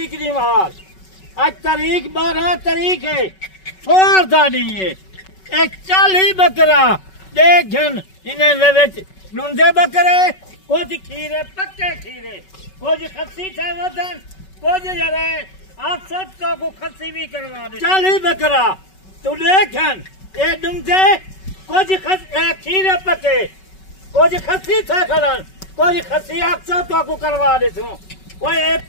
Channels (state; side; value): late; right; 5.3 ms